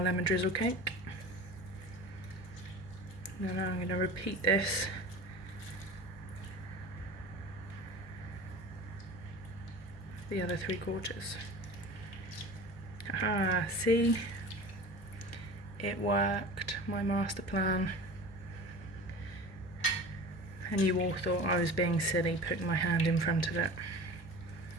lemon drizzle cake. And then I'm going to repeat this the other 3/4. Ah, see? It worked, my master plan. And you all thought I was being silly putting my hand in front of it.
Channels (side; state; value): both; normal; correlation 0.36